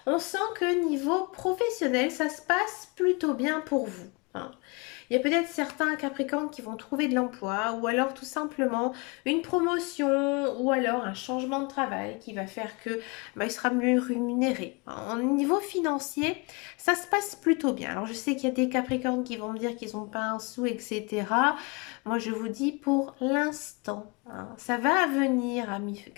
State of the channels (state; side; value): quieter; right; 29.5 dB